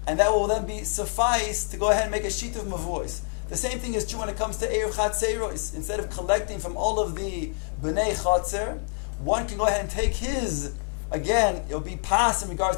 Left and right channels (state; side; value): silent; right; 61 dB below the other